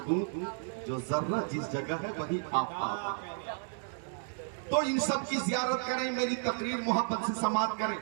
جو ذرہ جس جگہ ہے وہی آفتاب ہے۔ تو ان سب کی زیارت کریں، میری تقریر محبت سے سماعت کریں۔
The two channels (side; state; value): left; silent; digital silence